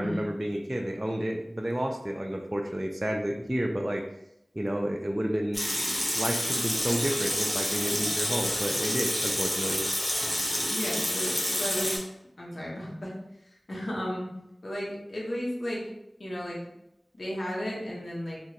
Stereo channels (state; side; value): normal; both; correlation 0.97